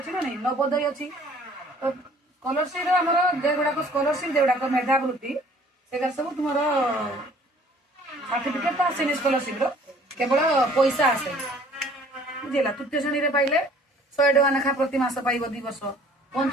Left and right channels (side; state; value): both; normal; correlation 0.54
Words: ना नहीं नवोदय अच्छी तो स्कॉलरशिप आमर जेगुड़ाक स्कॉलरशिप जेगुड़ाक मेधावृत्ति से सब तुम सर्टिफिकेट तो आसेनि स्कॉलरशिप केवल पैसा आसे बुझेगा तृतीय श्रेणी पाइले 100 टका लेखा प्रति मास पाइब 2 वर्ष